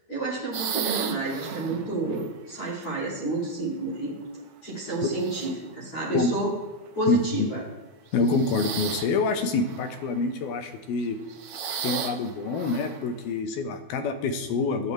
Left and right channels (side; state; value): right; late; 12 ms